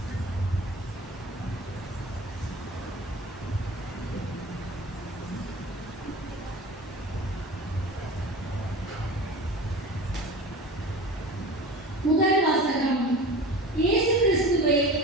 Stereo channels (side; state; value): both; normal; correlation 0.36